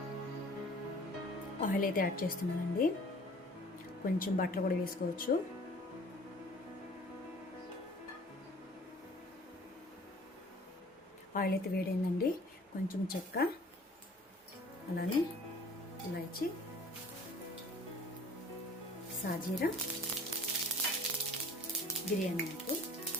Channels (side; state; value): both; normal; correlation 0.50